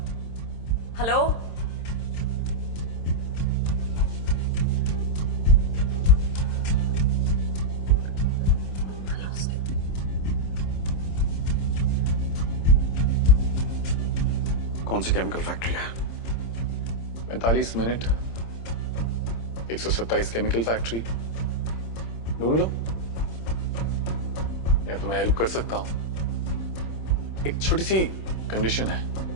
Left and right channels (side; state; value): right; late; 26 ms